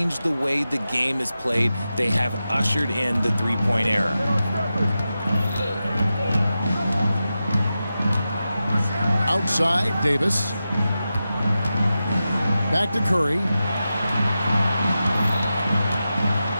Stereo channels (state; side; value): inverted; both; correlation -0.92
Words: the way the game is played. They have ushered in the three-point era. Outside, Davis. Back to Curry.